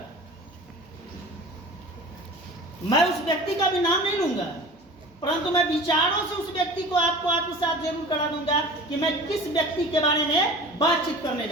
मैं उस व्यक्ति का भी नाम नहीं लूंगा, परंतु मैं विचारों से उस व्यक्ति को आपको आत्मसात जरूर करा दूंगा कि मैं किस व्यक्ति के बारे में बातचीत करने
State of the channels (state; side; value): normal; both; correlation 0.40